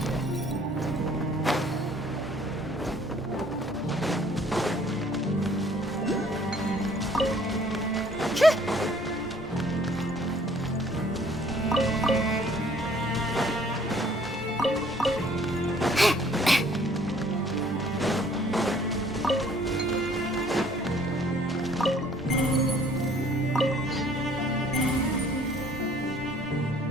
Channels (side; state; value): both; normal; correlation 0.58